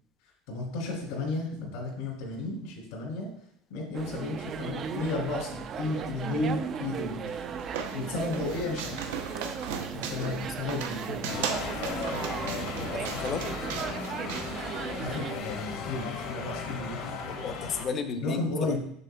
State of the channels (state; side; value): normal; both; correlation 0.37